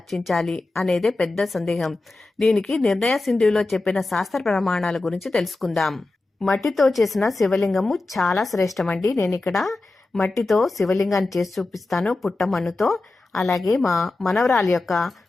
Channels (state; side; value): quieter; right; 3.2 dB